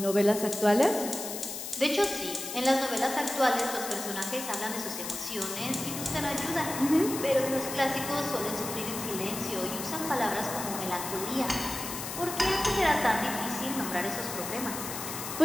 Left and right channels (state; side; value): noise; left; hiss, 7 dB below the sound